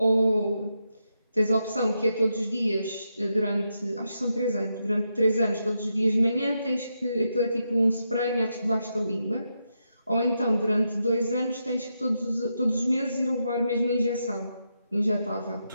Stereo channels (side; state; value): both; inverted; correlation -0.84